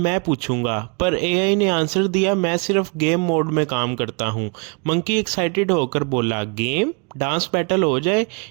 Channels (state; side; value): quieter; left; 35.5 dB